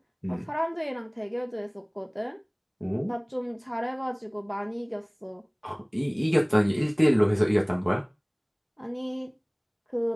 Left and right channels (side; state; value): both; identical; correlation 1.00